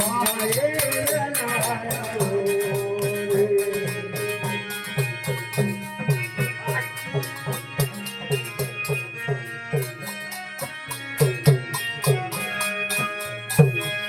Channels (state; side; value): identical; both; correlation 1.00